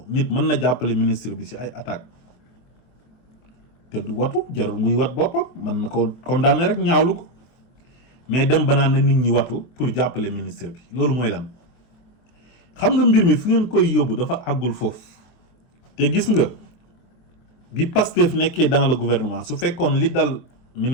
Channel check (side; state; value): right; late; 24 ms